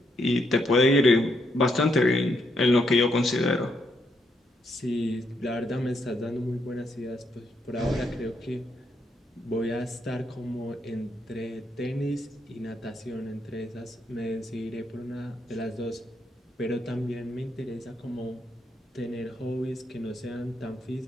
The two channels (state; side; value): normal; both; correlation 0.77